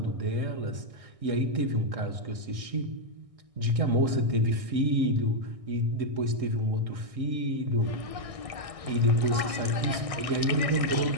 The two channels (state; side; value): late; left; 1.6 ms